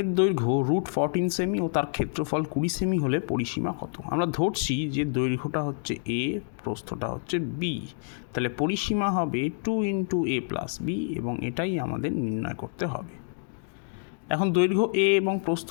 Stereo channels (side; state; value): right; silent; digital silence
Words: দৈর্ঘ্য √14 সেমি ও তার ক্ষেত্রফল 20 সেমি হলে পরিসীমা কত? আমরা ধরছি যে দৈর্ঘ্যটা হচ্ছে a, প্রস্থটা হচ্ছে b, তাহলে পরিসীমা হবে 2 × a + b এবং এটাই আমাদের নির্ণয় করতে হবে। এখন দৈর্ঘ্য a এবং প্রস্থ